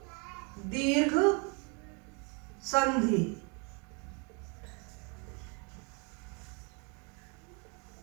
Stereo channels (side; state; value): left; quieter; 34.2 dB